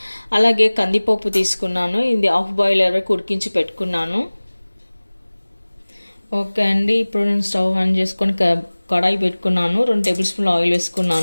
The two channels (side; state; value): both; inverted; correlation -1.00